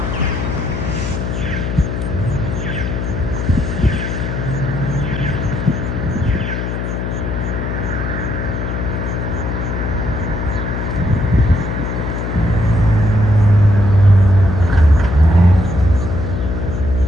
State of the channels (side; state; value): left; noise; hum, 3 dB below the sound